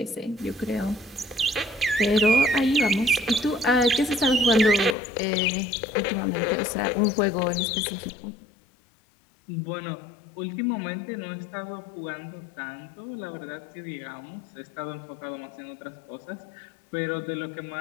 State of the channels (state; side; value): drops out; right; at 5.0 s